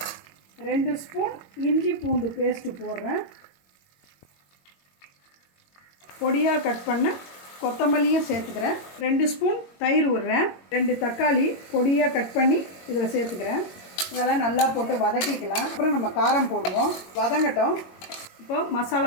2 ஸ்பூன் இஞ்சி பூண்டு பேஸ்ட்டு போடுறேன். பொடியாக கட் பண்ண கொத்தமல்லியும் சேர்த்துக்கிறேன். 2 ஸ்பூன் தயிர் விடுறேன். 2 தக்காளி பொடியாக கட் பண்ணி இதில் சேர்த்துக்கிறேன். இதெல்லாம் நல்லா போட்டு வதக்கிக்கலாம். அப்புறம் நம்ம காரம் போடுவோம். வதங்கட்டும். இப்போ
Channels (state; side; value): late; right; 22 ms